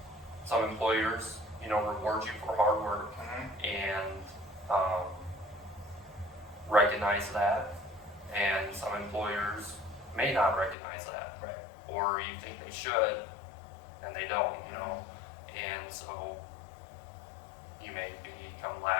Some employers, reward you for hard work and recognize that, and some employers may not recognize that, Right. or you think they should, and they don't, and so you may become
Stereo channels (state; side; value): drops out; right; at 10.8 s